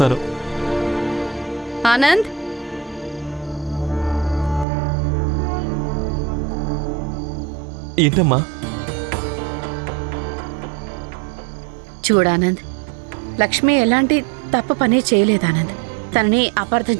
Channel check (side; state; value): left; drops out; at 4.7 s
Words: ఆనంద్, ఏంటమ్మా? చూడానంద్, లక్ష్మి ఎలాంటి తప్పు పని చేయలేదానంద్. తనని అపార్థం